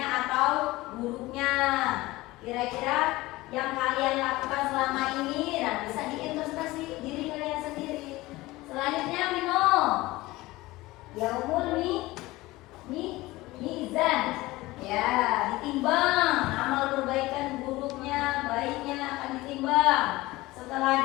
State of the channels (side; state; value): right; quieter; 19.4 dB